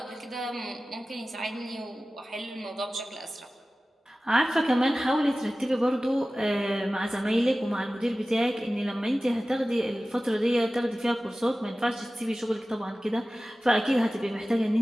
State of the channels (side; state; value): both; normal; correlation 0.96